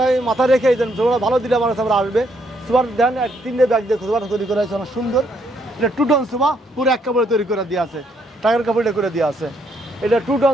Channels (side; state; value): both; normal; correlation 0.72